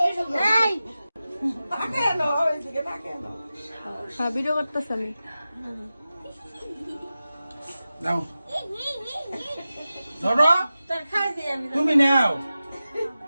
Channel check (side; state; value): both; inverted; correlation -0.94